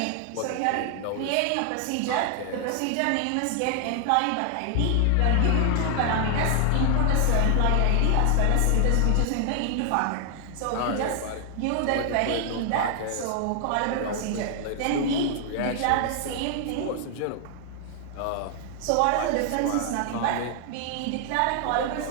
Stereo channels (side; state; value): both; different; correlation 0.00